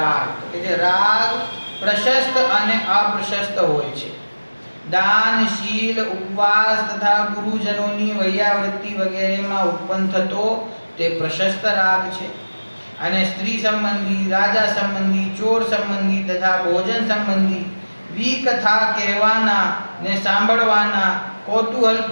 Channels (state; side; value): inverted; both; correlation -1.00